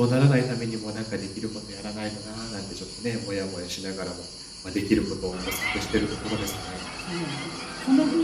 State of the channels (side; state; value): both; identical; correlation 1.00